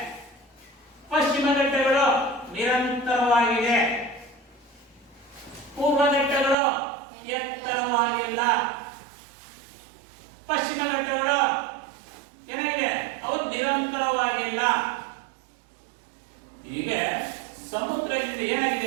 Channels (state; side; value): drops out; left; at 6.6 s